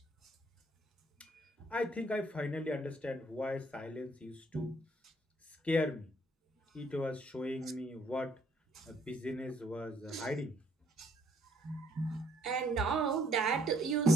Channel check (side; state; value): both; normal; correlation 0.65